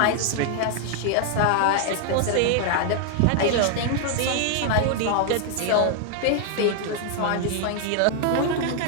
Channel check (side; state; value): both; different; correlation 0.00